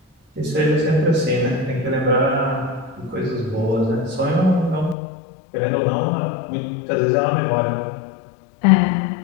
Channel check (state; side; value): drops out; right; at 5.0 s